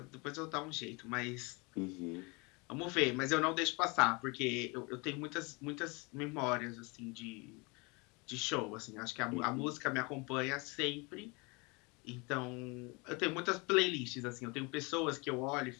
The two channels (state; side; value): quieter; right; 28.3 dB